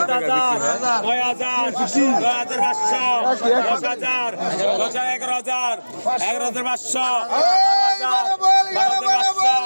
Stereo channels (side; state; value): both; inverted; correlation -1.00